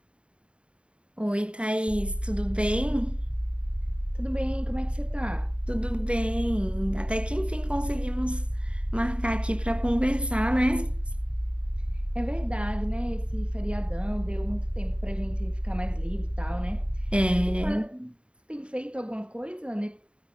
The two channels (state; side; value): late; left; 0.057 ms